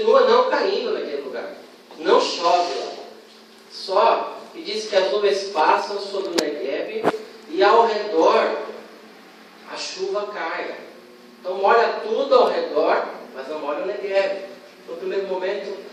não caindo naquele lugar. Não chove lá. Só que diz que as nuvens passam sobre o Negueb e ao redor a chuva cai. Então molha tudo ao redor, mas não molha o Negueb. No primeiro momento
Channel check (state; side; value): identical; both; correlation 1.00